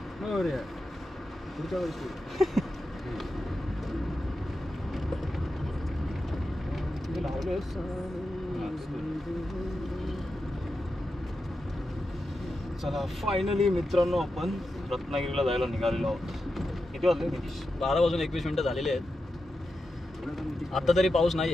चला फायनली मित्रांनो आपण रत्नागिरीला जायला निघालेलो आहोत. किती वाजले? 12:21 झालेले आहेत. आता तरी पाऊस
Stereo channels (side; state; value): both; normal; correlation 0.89